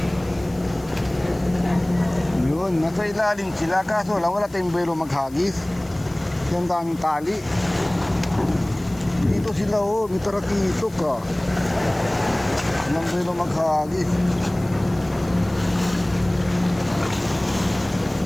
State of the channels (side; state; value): left; noise; hiss, 24 dB below the sound